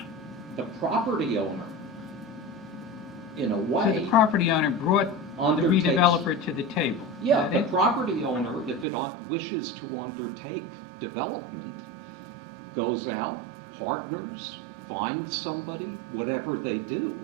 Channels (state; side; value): drops out; left; at 8.8 s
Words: The property owner, in a way... So the property owner brought the redeveloper to the table? Yeah, the property owner, if it wishes to undertake development, goes out, partners, finds somebody, whatever they do,